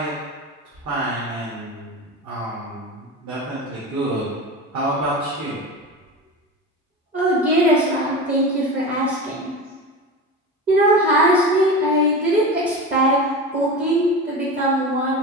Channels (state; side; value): normal; both; correlation 0.27